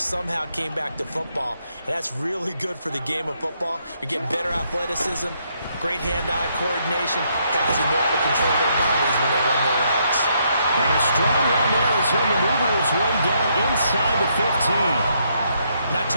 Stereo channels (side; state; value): both; inverted; correlation -0.74